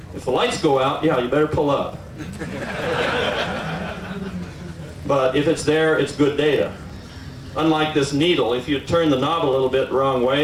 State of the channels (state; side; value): identical; both; correlation 1.00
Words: If the lights go out, yeah, you better pull up. But if it's there, it's good data. Unlike this needle, if you turn the knob a little bit the wrong